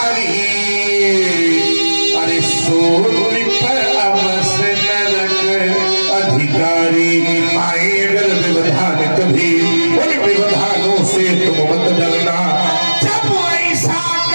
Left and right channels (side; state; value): both; inverted; correlation -1.00